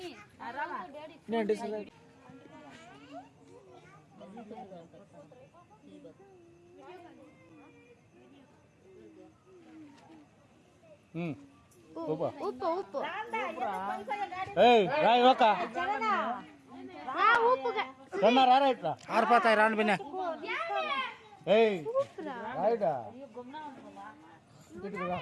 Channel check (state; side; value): identical; both; correlation 1.00